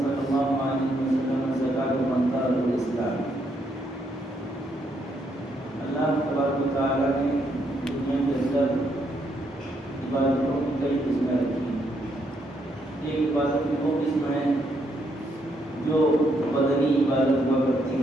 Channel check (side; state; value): both; normal; correlation 0.75